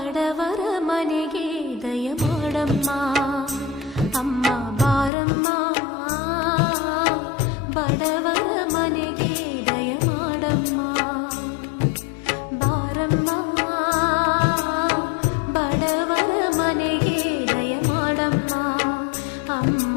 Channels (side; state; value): right; drops out; at 5.1 s